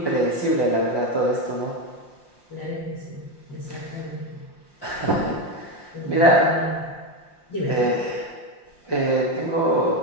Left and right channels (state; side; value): late; right; 5.7 ms